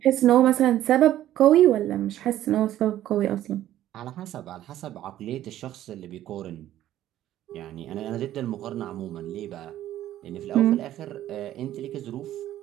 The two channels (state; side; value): quieter; left; 12.9 dB